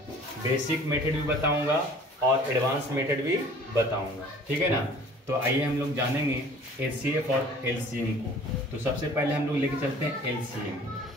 बेसिक मेथड भी बताऊंगा और एडवांस मेथड भी बताऊंगा, ठीक है ना। तो आइए हम लोग जानेंगे HCF और LCM को। तो सबसे पहले हम लोग लेके चलते हैं LCM,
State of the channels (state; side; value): normal; both; correlation 0.49